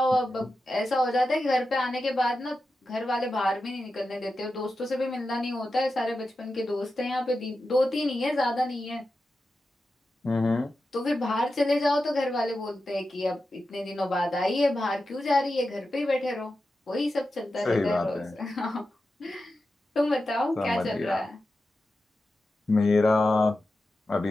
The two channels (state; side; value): normal; both; correlation 0.91